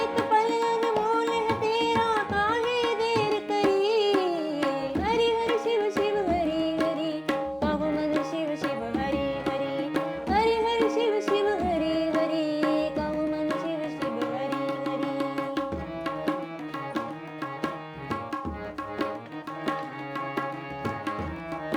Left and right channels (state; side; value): identical; both; correlation 1.00